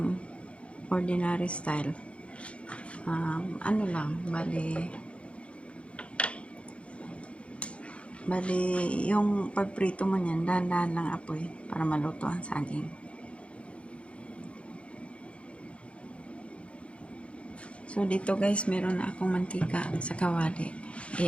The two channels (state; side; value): late; right; 0.060 ms